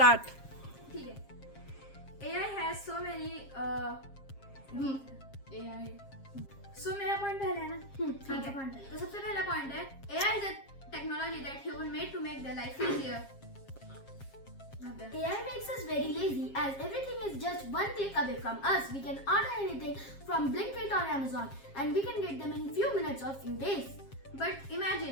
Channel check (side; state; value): right; late; 7.4 ms